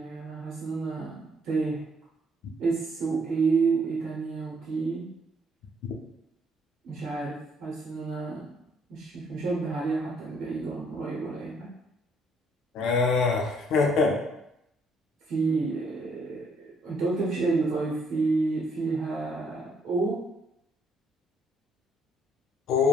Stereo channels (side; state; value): both; normal; correlation 0.67